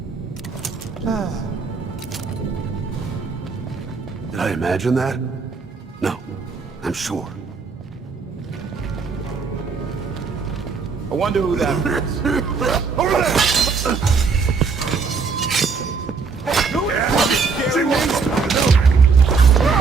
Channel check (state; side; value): quieter; left; 5.0 dB